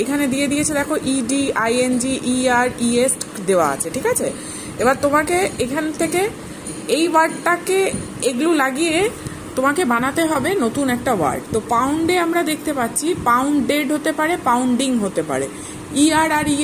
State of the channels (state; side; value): identical; both; correlation 1.00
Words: এখানে দিয়ে দিয়েছে দেখো ইডি, আইএনজি, ইআর, ইএস দেওয়া আছে, ঠিক আছে। এবার তোমাকে এখান থেকে এই ওয়ার্ডটাকে এগুলো লাগিয়ে তোমাকে বানাতে হবে নতুন একটা ওয়ার্ড। তো পাউন্ডে আমরা দেখতে পাচ্ছি পাউন্ডেড হতে পারে, পাউন্ডিং হতে পারে, ইআর আর